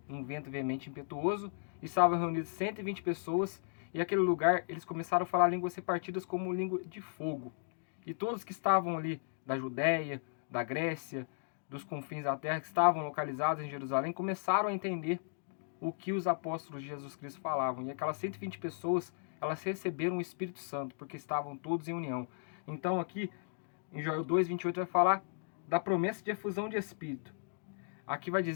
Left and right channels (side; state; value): right; silent; digital silence